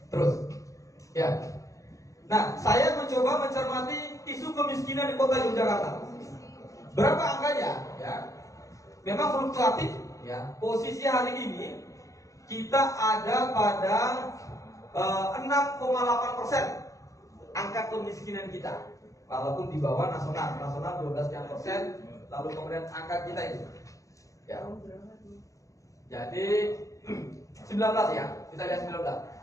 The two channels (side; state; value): right; late; 0.16 ms